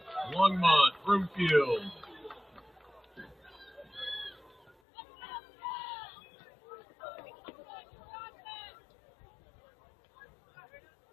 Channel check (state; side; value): drops out; right; at 4.8 s